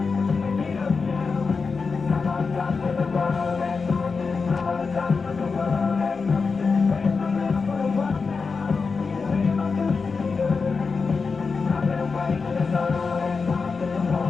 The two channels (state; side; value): quieter; right; 4.8 dB